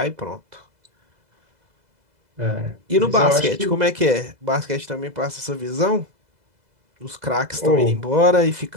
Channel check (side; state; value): left; late; 2.0 ms